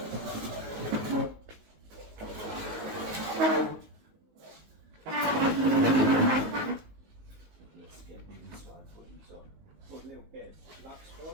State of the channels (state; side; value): late; left; 19 ms